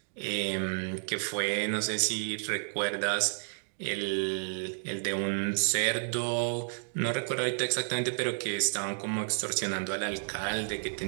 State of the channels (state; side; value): silent; left; digital silence